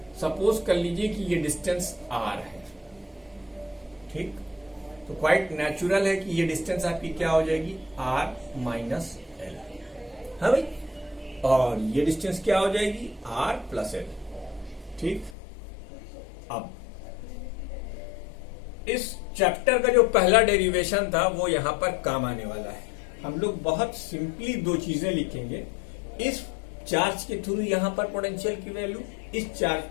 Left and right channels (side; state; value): right; drops out; at 15.4 s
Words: सपोज कर लीजिए कि ये डिस्टेंस R है, ठीक, तो क्वाइट नेचुरल है कि ये डिस्टेंस आपकी क्या हो जाएगी, R माइनस L, हाँ भाई, और ये डिस्टेंस क्या हो जाएगी, R प्लस L, ठीक। अब इस चैप्टर का जो पहला डेरिवेशन था वो यहां पर काम आने वाला है। हम लोग बहुत सिंपली 2 चीजें लिखेंगे, इस चार्ज के थ्रू यहां पर पोटेंशियल की वैल्यू, इस चार्ज